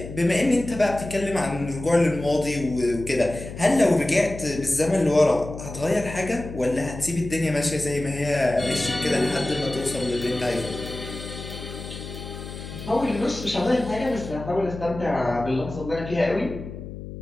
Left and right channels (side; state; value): left; noise; hum, 10 dB below the sound